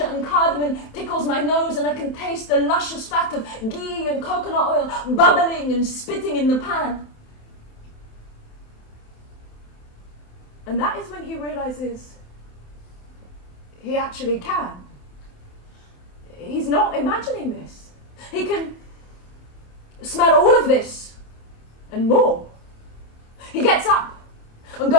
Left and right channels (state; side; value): late; right; 27 ms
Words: and cardamom tickles my nose, and I can taste the luscious fat of ghee and coconut oil bubbling and spitting in the pan. And that is when he realises he actually can. He's not imagining this. He can smell all of this and more. He gets up and